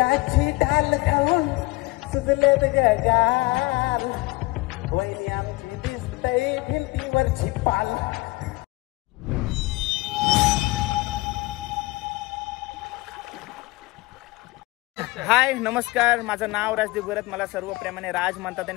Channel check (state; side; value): quieter; right; 22.6 dB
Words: डाल खाऊन सुजलेत गगार, वहिनी आमची दिसतय भिंतीवरची पाल. हाय नमस्कार, माझं नाव राजदीप गरत, मला सर्व प्रेमाने राज म्हणतात